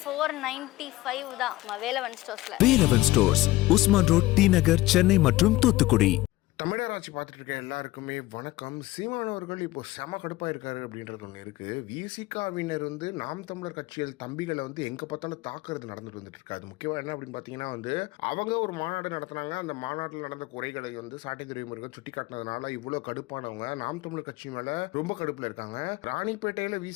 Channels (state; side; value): quieter; right; 18.3 dB